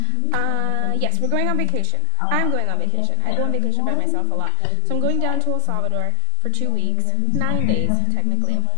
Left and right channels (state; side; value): different; both; correlation 0.00